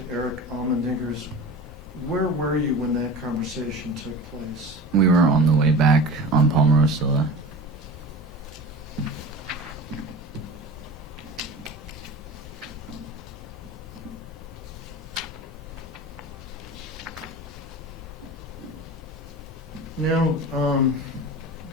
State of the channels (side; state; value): both; normal; correlation 0.34